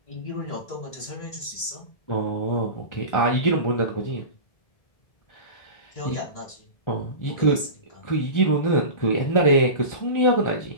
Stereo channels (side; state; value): right; late; 1.4 ms